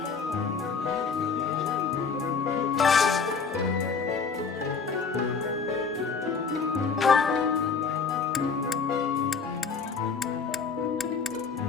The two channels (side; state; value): right; quieter; 5.4 dB